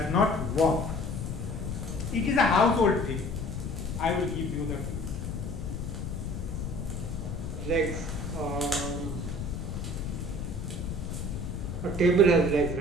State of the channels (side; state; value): left; noise; rumble, 5 dB below the sound